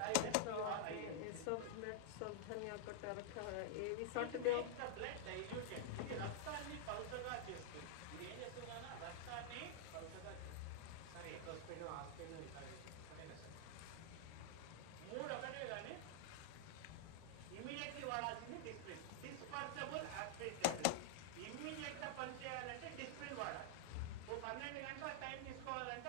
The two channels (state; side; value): different; both; correlation -0.01